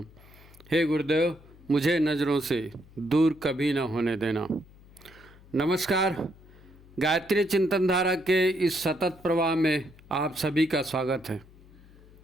हे गुरुदेव, मुझे नज़रों से दूर कभी न होने देना। नमस्कार, गायत्री चिंतन धारा के इस सतत प्रवाह में आप सभी का स्वागत है।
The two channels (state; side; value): noise; left; hum, 24 dB below the sound